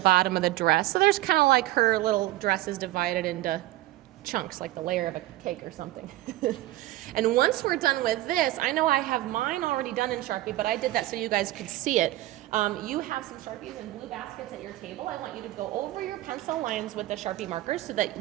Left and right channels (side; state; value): left; quieter; 16.5 dB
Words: of the dress. So there's kind of like her little dress is divided into chunks, like the layer of a cake or something. And once we're done with this, I know I have mine already done in Sharpie, but I did that so you guys could see it. You have some Sharpies and blue baskets at your table. I want you to go over your pencil lines with the Sharpie markers so that